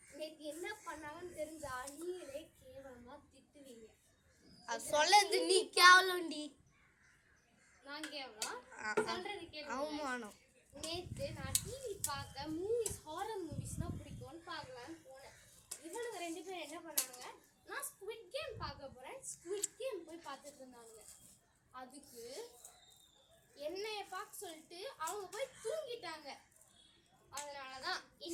நேற்று என்ன பண்ணாங்கன்னு தெரிஞ்சா நீங்களே கேவலமா திட்டுவீங்க. அது சொல்லது நீ கேவலம்டி. நான் கேவலம் சொல்றது கேளு. அவமானம். நேற்று நான் டிவி பார்க்க மூவிஸ் ஹாரர் மூவிஸ்னா பிடிக்கும்னு பார்க்கலான்னு போனேன். இவனுங்க 2 பேரும் என்ன பண்ணாங்க, நான் ஸ்குவிட் கேம் பார்க்க போறேன் ஸ்குவிட் கேம் போய் பார்த்துட்டு இருந்தாங்க. அதுக்கு என்னைய பார்க்க சொல்லிட்டு அவங்க போய் தூங்கிட்டாங்க. அதனாலதான்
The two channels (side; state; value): both; identical; correlation 1.00